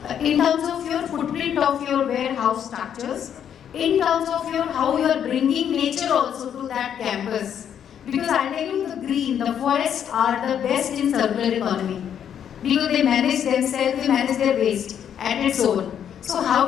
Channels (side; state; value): right; quieter; 9.0 dB